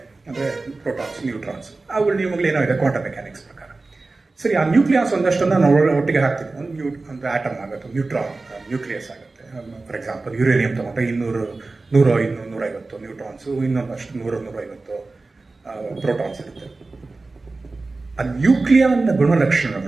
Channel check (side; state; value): left; quieter; 3.5 dB